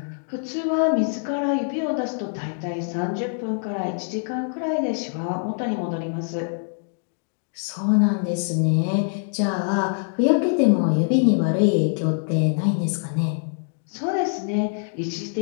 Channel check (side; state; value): right; silent; digital silence